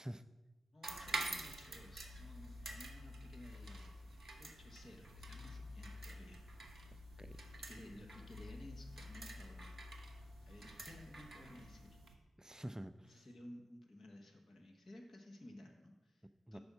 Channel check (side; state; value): both; normal; correlation 0.88